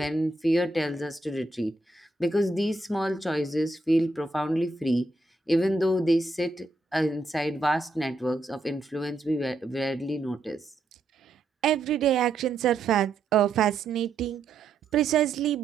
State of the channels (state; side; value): quieter; left; 3.2 dB